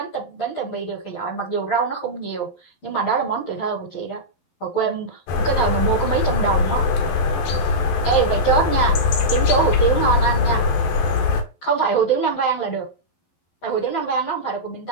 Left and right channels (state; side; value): late; right; 11 ms